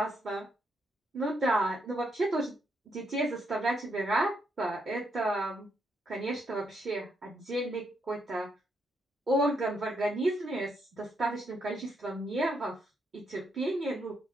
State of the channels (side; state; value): both; normal; correlation 0.77